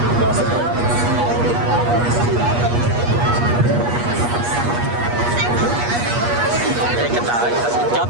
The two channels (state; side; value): late; left; 8.4 ms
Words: Đây cái tờ chóp